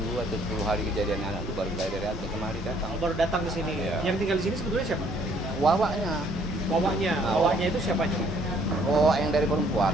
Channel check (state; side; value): normal; both; correlation 0.63